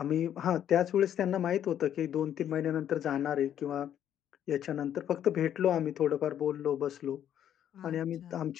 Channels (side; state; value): right; quieter; 10.2 dB